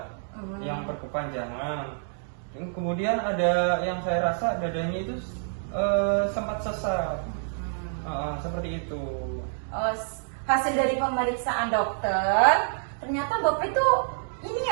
Yang berkepanjangan. Kemudian ada yang saya rasa dadanya itu sempat sesak. Seperti itu. Oh, hasil dari pemeriksaan dokter, ternyata Bapak itu ini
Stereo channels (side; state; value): left; silent; digital silence